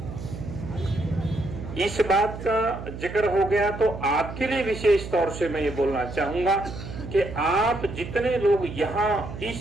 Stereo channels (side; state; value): right; noise; hum, 10 dB below the sound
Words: इस बात का जिक्र हो गया तो आपके लिए विशेष तौर से मैं ये बोलना चाहूंगा कि आप जितने लोग यहाँ